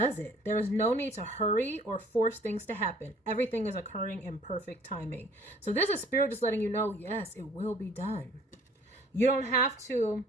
it. There is no need to hurry or force things to happen. Everything is occurring in perfect timing. So this is Spirit just letting you know, yes, it will be done. You don't have to.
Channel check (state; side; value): normal; both; correlation 0.55